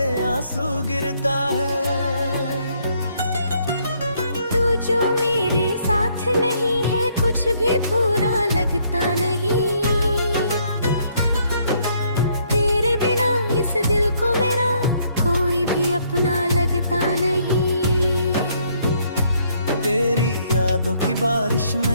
आंसू गिरता है। तू जो मेरे साथ नहीं है कुछ भी पूरा लगता नहीं। तेरे बिना इस दिल को मेरा कोई भी अपना लगता नहीं। तेरी यादों की बारिश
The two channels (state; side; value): inverted; both; correlation -0.69